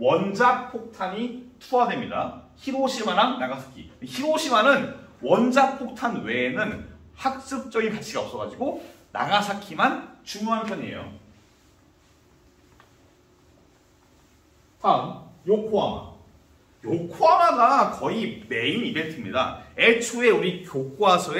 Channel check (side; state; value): both; identical; correlation 1.00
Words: 투하됩니다. 히로시마랑 나가사키. 히로시마는 원자폭탄 외에는 학습적인 가치가 없어가지고 나가사키만 중요한 편이에요. 다음 요코하마. 요코하마가 거의 메인 이벤트입니다. 애초에 우리